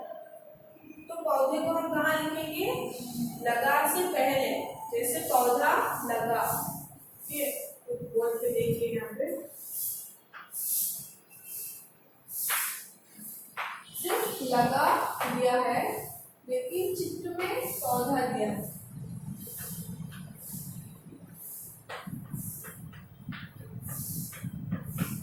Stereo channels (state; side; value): identical; both; correlation 1.00